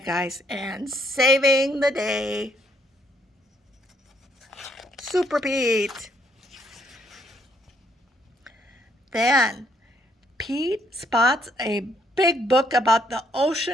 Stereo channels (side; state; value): both; normal; correlation 0.71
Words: guys and saving the day. Super Pete. Then Pete spots a big book about the